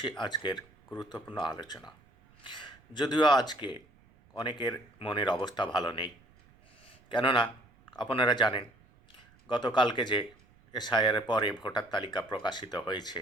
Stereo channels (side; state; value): right; noise; rumble, 29 dB below the sound